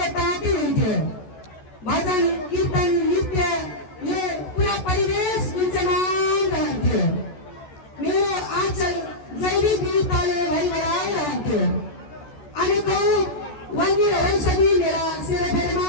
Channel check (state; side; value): late; right; 14 ms